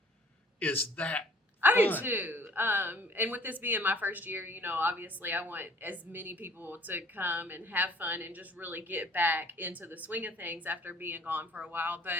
is that I do fun. too. And with this being my first year, obviously I want as many people to come and have fun and just really get back into the swing of things after being gone for a while.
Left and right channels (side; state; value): both; normal; correlation 0.54